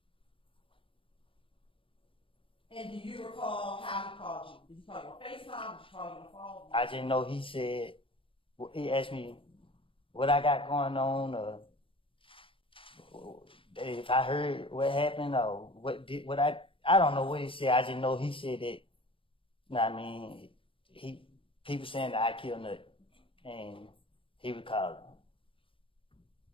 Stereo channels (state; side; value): late; right; 0.25 ms